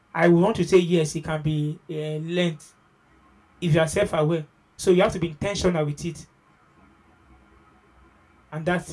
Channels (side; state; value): both; identical; correlation 1.00